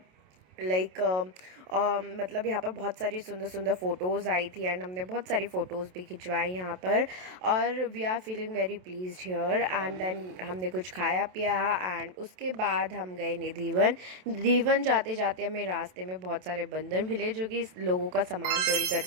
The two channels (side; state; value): left; late; 27 ms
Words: like मतलब यहाँ पर बहुत सारी सुंदर सुंदर फ़ोटोज़ आई थी एंड हमने बहुत सारी फ़ोटोज़ भी खिंचवाई यहाँ पर। और we are feeling very pleased here. And then हमने कुछ खाया पिया एंड उसके बाद हम गए निधिवन। निधिवन जाते जाते हमें रास्ते में बहुत सारे बंदर मिले जो कि लोगों का सामान चोरी